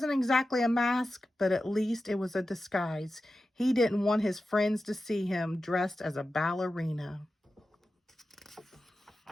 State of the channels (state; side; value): normal; both; correlation 0.93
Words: exactly a mask, but at least it was a disguise. He didn't want his friends to see him dressed as a ballerina.